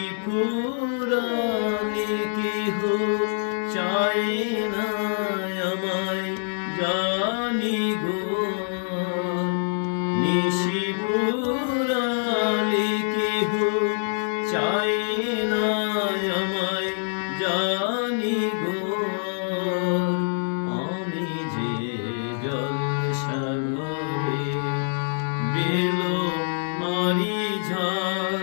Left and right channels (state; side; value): silent; right; digital silence